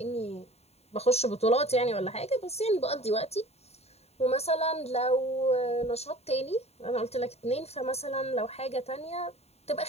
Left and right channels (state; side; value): late; right; 0.30 ms